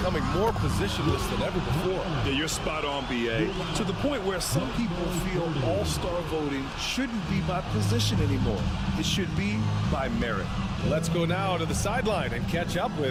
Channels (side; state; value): both; identical; correlation 1.00